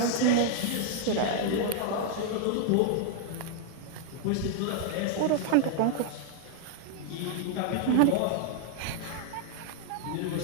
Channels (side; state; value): both; different; correlation 0.00